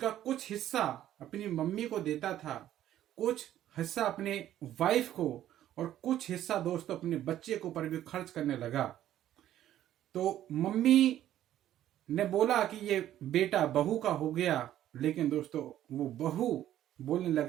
कुछ हिस्सा अपनी मम्मी को देता था, कुछ हिस्सा अपने वाइफ को और कुछ हिस्सा दोस्तों अपने बच्चे के ऊपर भी खर्च करने लगा। तो मम्मी ने बोला कि ये बेटा बहू का हो गया, लेकिन दोस्तों वो बहू बोलने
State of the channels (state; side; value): quieter; left; 12.3 dB